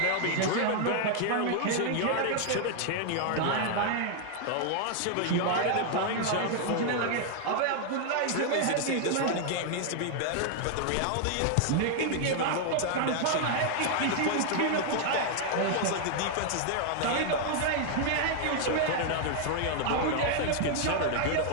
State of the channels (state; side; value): different; both; correlation 0.00